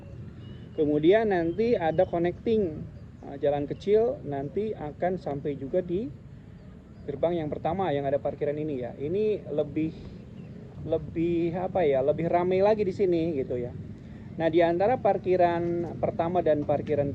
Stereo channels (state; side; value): identical; both; correlation 1.00